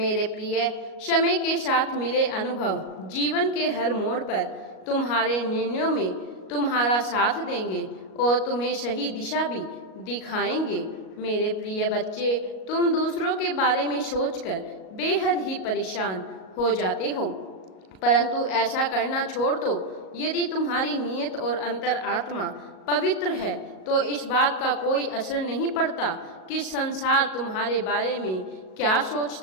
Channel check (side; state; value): right; late; 37 ms